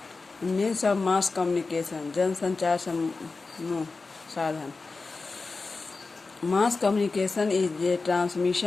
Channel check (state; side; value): quieter; right; 3.9 dB